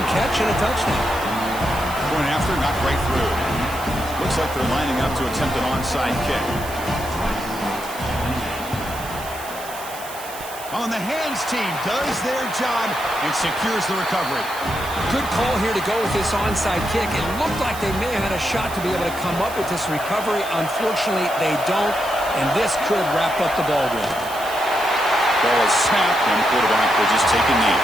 catch and a touchdown. Going after, not right through. Looks like they're lining up to attempt an onside kick. On the hands team does their job and secures the recovery. Good call here to go with this onside kick. It looked like they may have had a shot to be able to come up with this recovery. Unfortunately, they don't, and this could wrap up the ball game. Ball is snapped, and the quarterback will just take a knee.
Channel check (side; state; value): right; noise; hiss, 14 dB below the sound